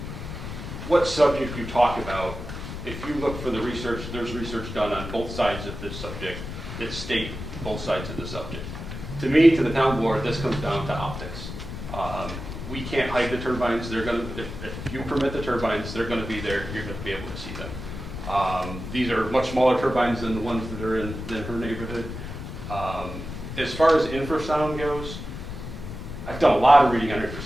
what subject you talk about, if you look for the research, there's research done on both sides of this subject that state both sides of the subject. To me, to the town board, this comes down to optics. We can't hide the turbines. They're going to, if you permit the turbines, they're going to be there. You're going to be able to see them. These are much smaller turbines than the ones that are in her neighborhood. As far as infrasound goes, I've done a lot of reading on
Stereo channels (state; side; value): noise; left; rumble, 8 dB below the sound